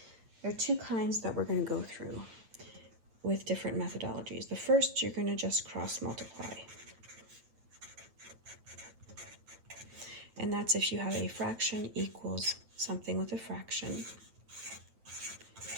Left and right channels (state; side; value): late; left; 8.8 ms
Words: There are two kinds that we're going to go through with different methodologies. The first, you're going to just cross multiply. And that's if you have a fraction equals something with a fraction,